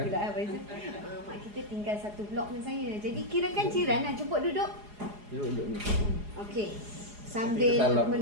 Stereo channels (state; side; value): late; left; 4.8 ms